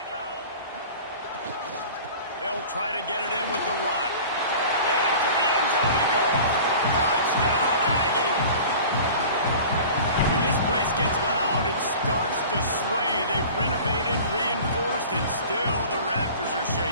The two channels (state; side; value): inverted; both; correlation -0.40